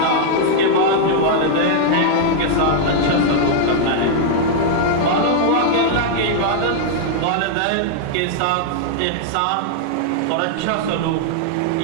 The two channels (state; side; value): different; both; correlation -0.01